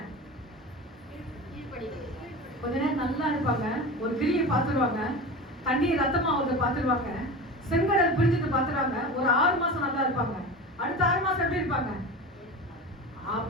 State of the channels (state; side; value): normal; both; correlation 0.30